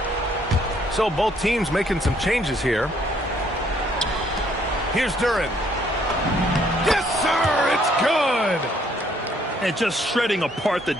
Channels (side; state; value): both; normal; correlation 0.66